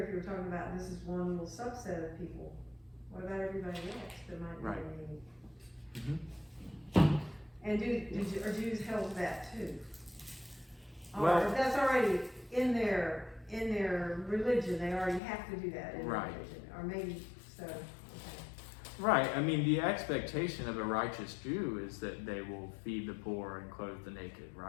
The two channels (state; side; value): drops out; right; at 15.2 s